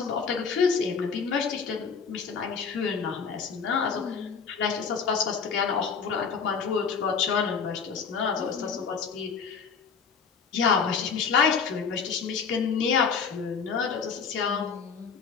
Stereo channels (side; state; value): right; quieter; 5.9 dB